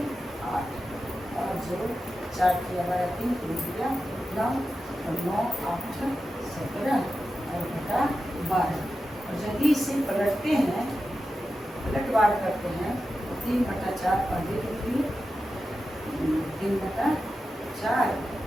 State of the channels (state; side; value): normal; both; correlation 0.91